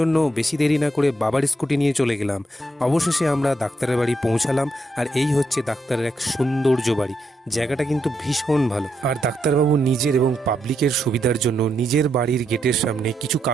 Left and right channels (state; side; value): normal; both; correlation 0.80